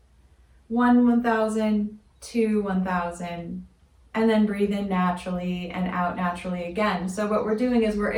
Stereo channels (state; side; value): identical; both; correlation 1.00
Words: 1, 1,000, 2, 1,000. And then breathe in naturally and out naturally again. So what we're doing is we're